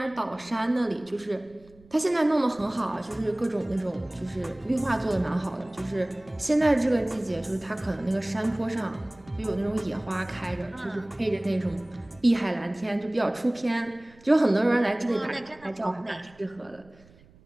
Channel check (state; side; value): noise; right; rumble, 27 dB below the sound